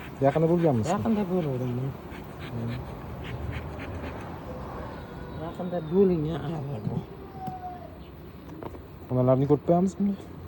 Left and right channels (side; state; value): both; identical; correlation 1.00